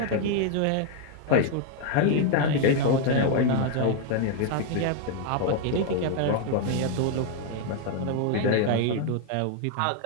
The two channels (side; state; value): both; different; correlation 0.01